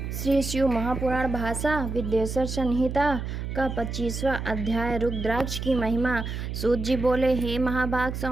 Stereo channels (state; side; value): noise; right; hum, 5 dB below the sound